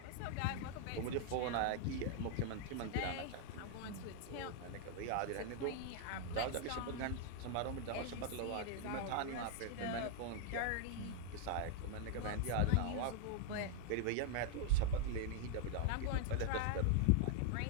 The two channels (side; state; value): both; different; correlation 0.00